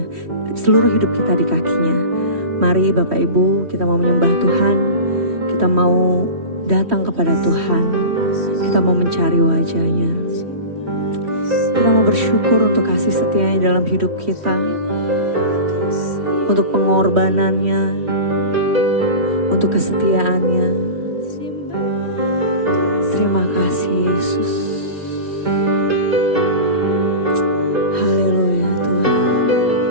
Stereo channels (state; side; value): late; left; 3.1 ms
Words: Seluruh hidup kita di kakinya. Mari Bapak Ibu, kita mau menyembah Tuhan. Kita mau datang kepada Tuhan. Kita mau mencari wajahnya. Kita mau bersyukur untuk kasih setianya dalam hidup kita. Untuk pengorbanannya. Untuk kesetiaannya. Terima kasih Yesus. Haleluya Tuhan.